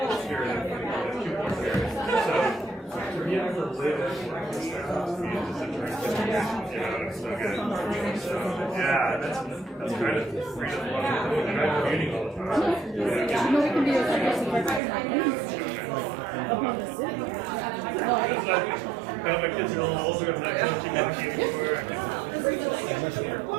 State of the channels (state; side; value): drops out; left; at 14.8 s